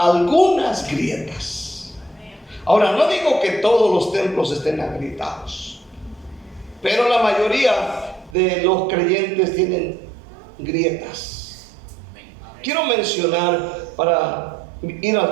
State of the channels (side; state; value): left; drops out; at 8.3 s